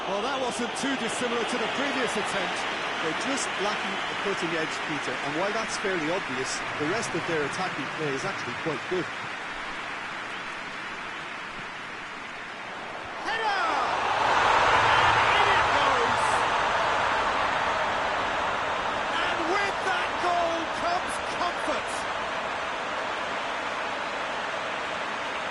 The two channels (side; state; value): both; identical; correlation 1.00